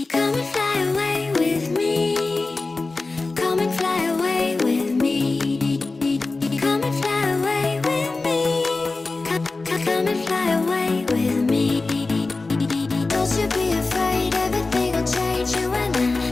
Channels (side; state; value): right; quieter; 3.6 dB